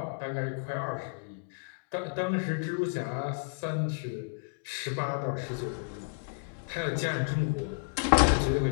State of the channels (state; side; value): silent; right; digital silence